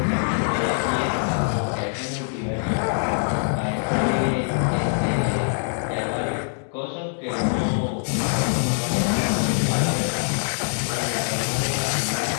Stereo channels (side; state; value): right; silent; digital silence